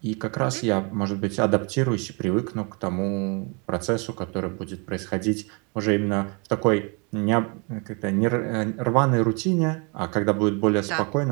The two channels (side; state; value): left; quieter; 32.9 dB